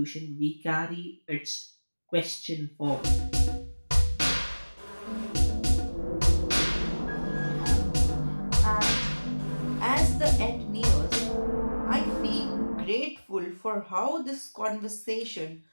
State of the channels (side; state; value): both; inverted; correlation -1.00